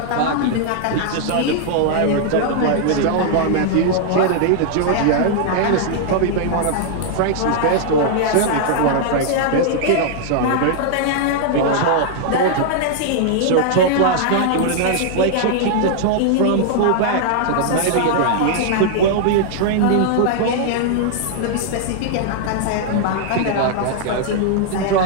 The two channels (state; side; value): different; both; correlation -0.01